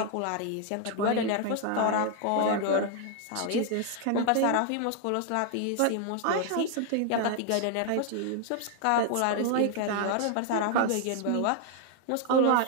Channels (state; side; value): different; both; correlation 0.00